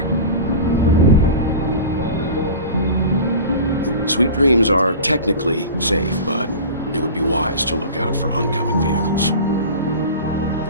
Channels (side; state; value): both; inverted; correlation -0.34